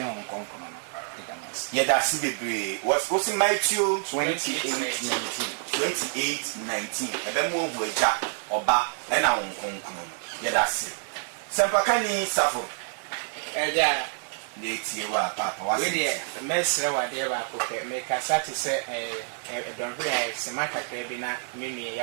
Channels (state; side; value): silent; left; 60 dB below the other